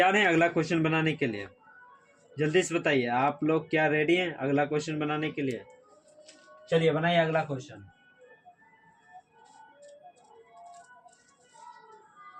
हैं अगला क्वेश्चन बनाने के लिए? जल्दी से बताइए आप लोग क्या रेडी हैं अगला क्वेश्चन बनाने के लिए? चलिए बनाइए अगला क्वेश्चन।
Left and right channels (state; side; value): identical; both; correlation 1.00